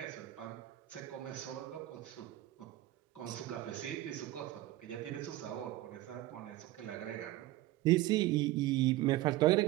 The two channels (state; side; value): quieter; left; 16.2 dB